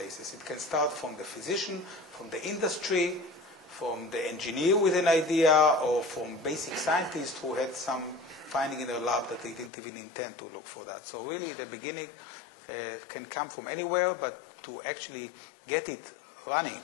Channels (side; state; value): right; drops out; at 9.7 s